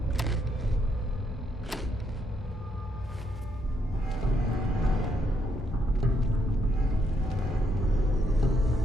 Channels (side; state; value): both; normal; correlation 0.76